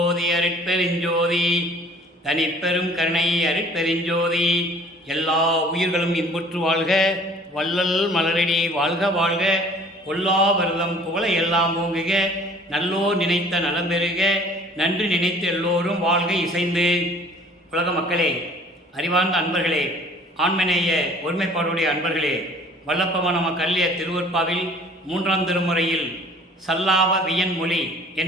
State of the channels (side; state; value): both; normal; correlation 0.51